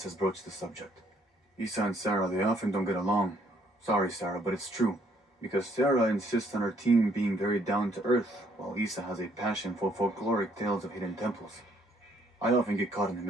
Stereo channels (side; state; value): both; normal; correlation 0.67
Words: has broached the subject. Isa and Sarah, they often don't get along. Sorry, Sarah, but it's true. Because Sarah insists on her team being very down to earth, while Isa has a passion for folkloric tales of hidden temples. I often get caught in the